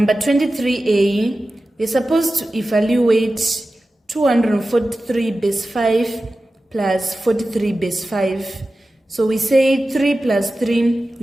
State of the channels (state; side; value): normal; both; correlation 0.94